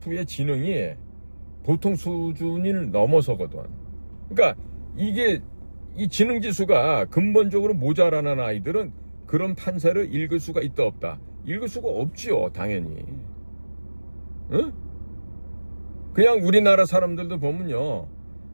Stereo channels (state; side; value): inverted; both; correlation -1.00